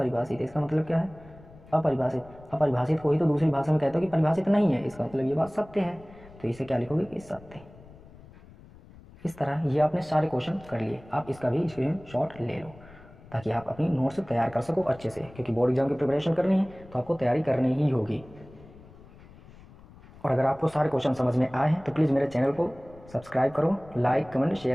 इसका मतलब क्या है अपरिभाषित। अपरिभाषित को ही तो दूसरी भाषा में कहते हो कि परिभाषित नहीं है, इसका मतलब ये बात सत्य है। तो इसे क्या लिखोगे कि सत्य। इस तरह ये आपने सारे क्वेश्चन कर लिए। आप इसका भी स्क्रीनशॉट ले लो ताकि आप अपनी नोट्स तैयार कर सको अच्छे से, क्योंकि बोर्ड एग्जाम की प्रिपरेशन करनी है तो आपको तैयारी करनी ही होगी। और अगर आपको सारे क्वेश्चन समझ में आए हैं तो प्लीज़ मेरे चैनल को सब्सक्राइब करो, लाइक कमेंट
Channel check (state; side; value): noise; left; rumble, 22 dB below the sound